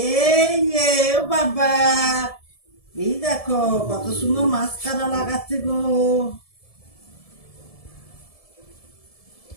এই যে ও বাবা এই দেখো কত সুন্দর মাস্কারা লাগাচ্ছে গো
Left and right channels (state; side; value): late; right; 1.7 ms